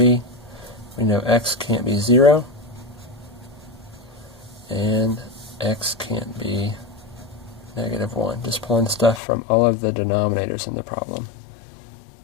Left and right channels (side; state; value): right; drops out; at 9.2 s